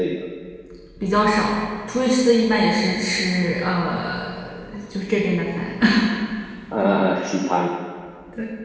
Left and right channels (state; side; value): identical; both; correlation 1.00